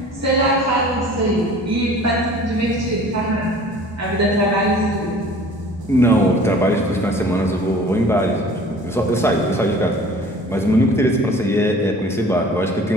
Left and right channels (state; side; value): normal; both; correlation 0.47